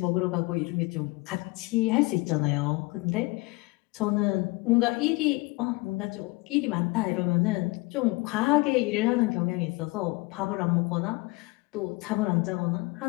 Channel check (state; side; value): quieter; right; 24.0 dB